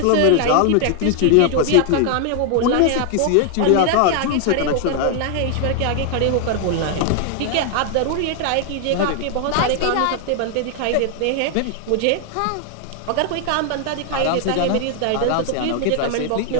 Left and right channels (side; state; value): both; different; correlation 0.00